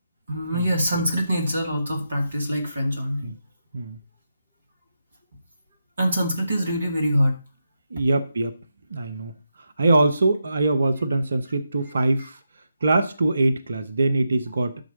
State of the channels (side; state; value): both; inverted; correlation -0.86